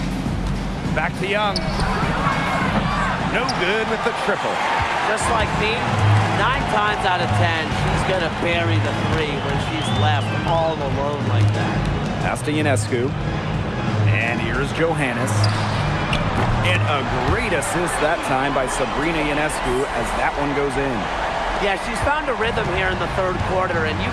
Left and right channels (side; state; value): both; identical; correlation 1.00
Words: Back to Young. No good with the triple. Just like me, 9 times out of 10, she's going to bury the three when she's left all alone like that. Pass to Ionescu. And here's Johannes. And a great assist that time by Sabrina Ionescu as that one goes in. Yeah, she's found a rhythm here in the third quarter, and you